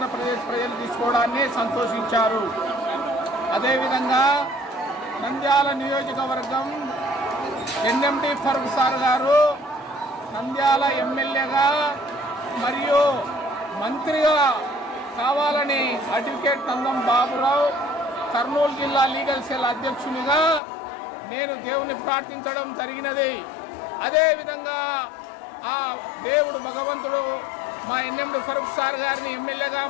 ప్రజలు తీసుకోవడాన్ని సంతోషించారు. అదేవిధంగా నంద్యాల నియోజకవర్గం ఎన్ఎండి ఫరూక్ సార్ గారు నంద్యాల ఎమ్మెల్యేగా మరియు మంత్రిగా కావాలని అడ్వకేట్ నందం బాబురావు కర్నూలు జిల్లా లీగల్ సెల్ అధ్యక్షునిగా నేను దేవుని ప్రార్థించడం జరిగినది. అదేవిధంగా ఆ దేవుడు భగవంతుడు మా ఎన్ఎండి ఫరూక్ సార్ గారిని ఎమ్మెల్యేగా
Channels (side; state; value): right; drops out; at 20.6 s